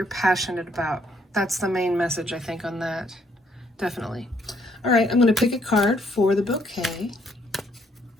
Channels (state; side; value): normal; both; correlation 0.70